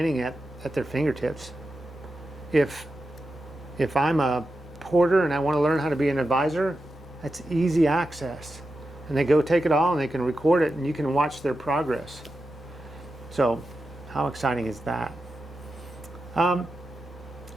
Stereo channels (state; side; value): normal; both; correlation 0.90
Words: at their fingertips. If I'm a porter and I want to learn how to be an advisor, that's easy access. And they go take it all and they can record it and you can watch their progress. So how exciting is that?